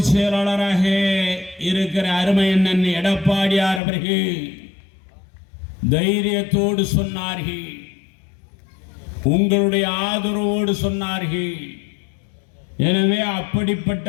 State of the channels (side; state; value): right; drops out; at 3.8 s